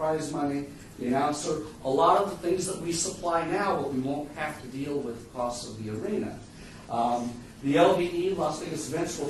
money, the announcer, a lot of the things that we supply now, but we won't have to deal with the costs of the arena. The LVE, Las Vegas Events, will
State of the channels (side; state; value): both; identical; correlation 1.00